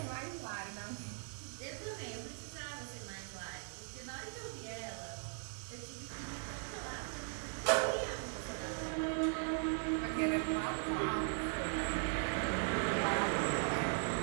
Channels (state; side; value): silent; left; 52 dB below the other